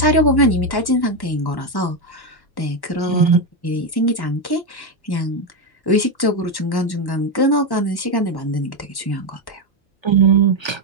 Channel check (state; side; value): late; right; 1.1 ms